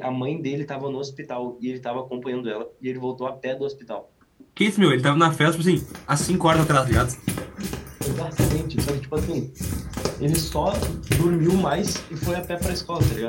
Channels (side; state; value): both; identical; correlation 1.00